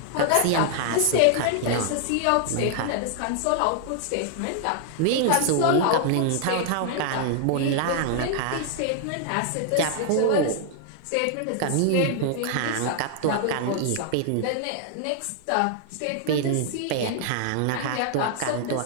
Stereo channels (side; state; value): both; different; correlation 0.00